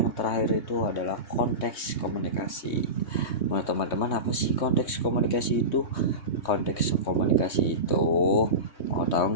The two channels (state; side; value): late; right; 3.2 ms